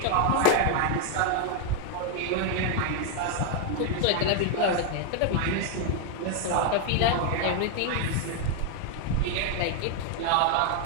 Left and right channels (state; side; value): different; both; correlation 0.00